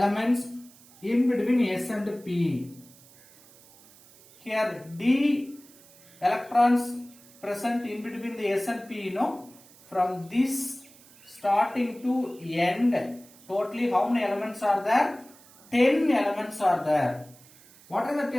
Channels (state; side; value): noise; right; hiss, 25 dB below the sound